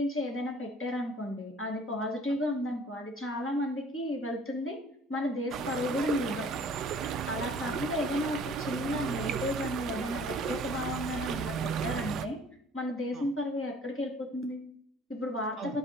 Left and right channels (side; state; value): both; normal; correlation 0.52